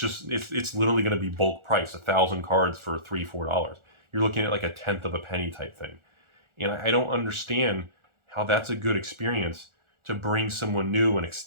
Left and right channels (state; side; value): late; left; 1.4 ms